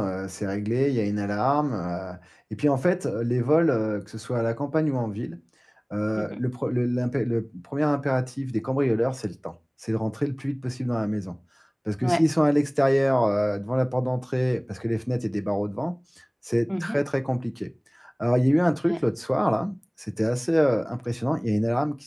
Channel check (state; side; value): identical; both; correlation 1.00